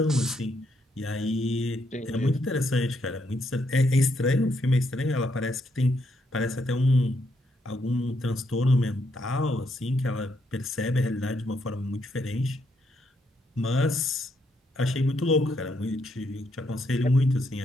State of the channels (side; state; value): both; normal; correlation 0.76